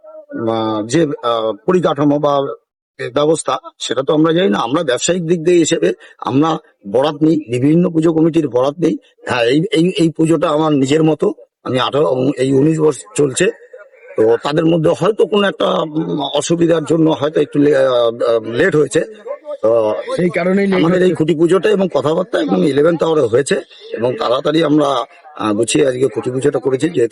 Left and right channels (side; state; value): both; identical; correlation 1.00